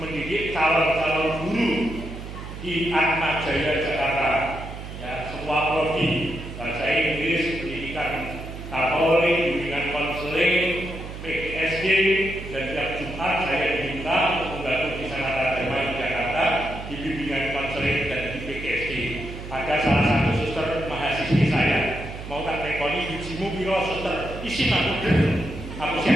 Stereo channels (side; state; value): right; noise; hum, 10 dB below the sound